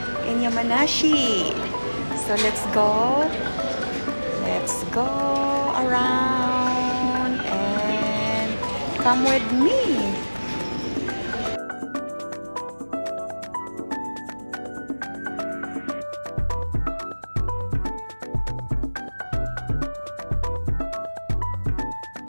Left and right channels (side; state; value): both; inverted; correlation -1.00